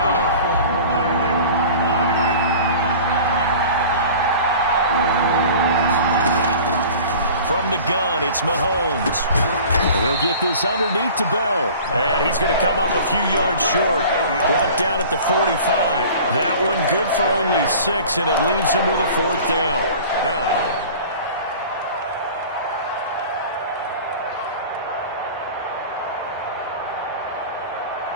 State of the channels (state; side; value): inverted; both; correlation -0.42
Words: From the gun, it's Mahomes. He'll get this underneath to Bell. And he's going to come up a few yards short. Brought down at the 45. That one good for only 6, and it leaves him with a 4th down. 4th down.